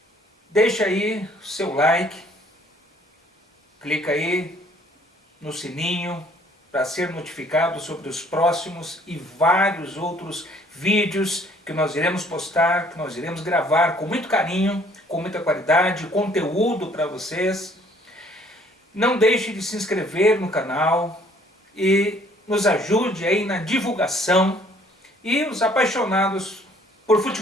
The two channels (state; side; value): normal; both; correlation 0.59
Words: Deixa aí o seu like, clica aí no sininho para ser notificado sobre os próximos e vários outros vídeos que nós iremos postar, que nós iremos gravar com muito carinho, com muita qualidade, conteúdo para vocês. Não deixe de se inscrever no canal e nos ajude aí na divulgação, e os apaixonados por